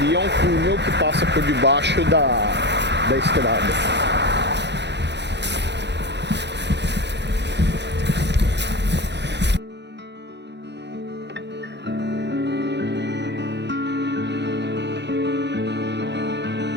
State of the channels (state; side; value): late; left; 0.50 ms